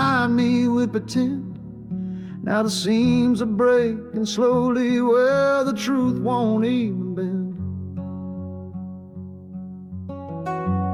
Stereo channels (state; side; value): identical; both; correlation 1.00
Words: me with pretend. Now the seams are breaking slowly where the truth won't even bend.